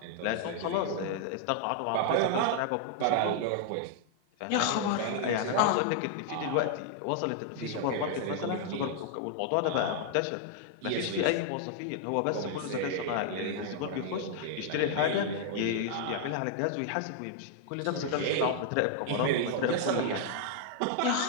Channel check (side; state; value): both; different; correlation -0.01